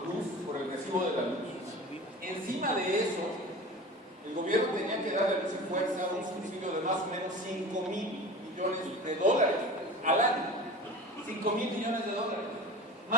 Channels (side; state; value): both; normal; correlation 0.36